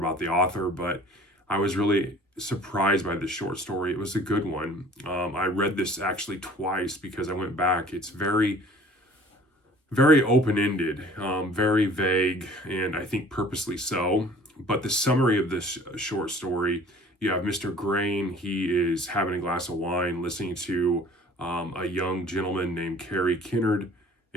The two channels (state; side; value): normal; both; correlation 0.50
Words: the author, but I was really surprised by this short story. It was a good one. I read this actually twice because I went back. It's very, very open-ended, very vague, and I think purposely so. But the summary of this short story, you have Mr. Grain. He is having a glass of wine, listening to a young gentleman named Carey Kennard.